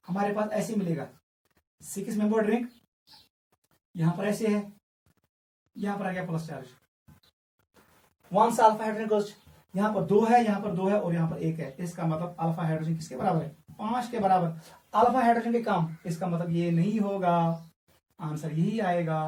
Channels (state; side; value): identical; both; correlation 1.00